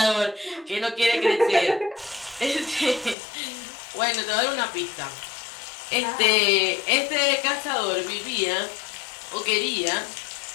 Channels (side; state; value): right; drops out; at 3.2 s